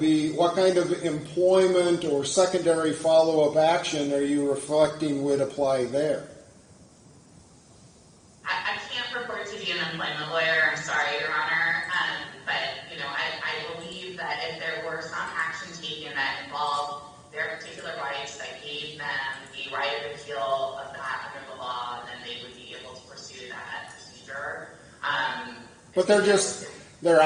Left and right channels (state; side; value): identical; both; correlation 1.00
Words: what kind of employment or secondary follow-up action are you reflecting would apply there? I can't purport to be an employment lawyer, I'm sorry, Your Honor, but I believe that if there were some action taken that involved their particular rights that gave them the right of appeal of that under the law, then they would be able to pursue that procedure. But they're